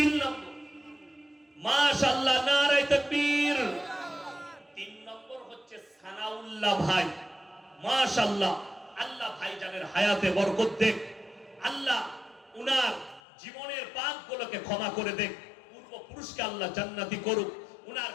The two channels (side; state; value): right; drops out; at 13.2 s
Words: নম্বর, মাশাআল্লাহ, নারায়ে তাকবীর। 3 নম্বর হচ্ছে সানাউল্লাহ ভাই। মাশাআল্লাহ, আল্লাহ ভাইজানের হায়াতে বরকত দেখ। আল্লাহ উনার জীবনের পাপগুলোকে ক্ষমা করে দেখ। পূর্বপুরুষকে আল্লাহ জান্নাতি করুক। উনার